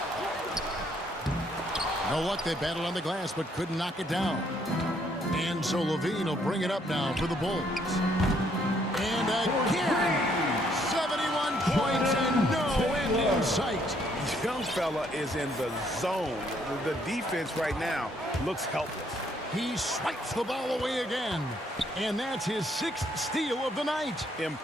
No luck, they battled on the glass, but couldn't knock it down. And so Levine will bring it up now for the Bulls. And again, 71 points and no end in sight. Young fella is in the zone. The defense right now looks helpless. He swipes the ball away again. And that's his 6th steal of the night.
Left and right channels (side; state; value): both; normal; correlation 0.69